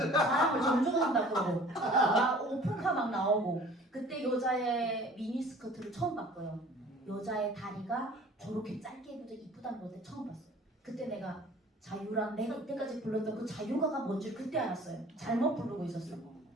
존중한다고 그러고 막 오픈카 막 나오고 그때 여자의 미니스커트를 처음 봤고요. 여자의 다리가 저렇게 짧게 입어도 이쁘다는 걸 처음 봤어요. 그때 내가 내가 이때까지 불렀던 그 자유가가 뭔지 그때 알았어요. 잘못 부르고 있었어.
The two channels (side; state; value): both; normal; correlation 0.49